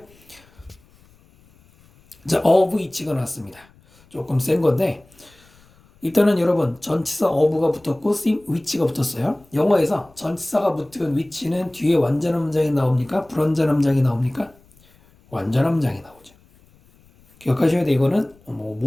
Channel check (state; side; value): noise; left; rumble, 30 dB below the sound